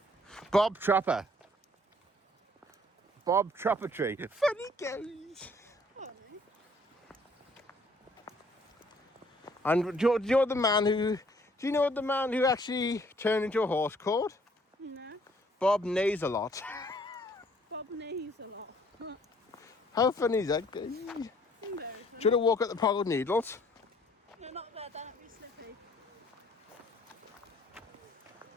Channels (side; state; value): both; normal; correlation 0.61